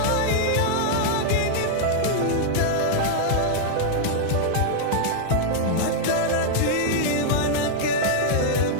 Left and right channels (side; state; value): both; different; correlation -0.01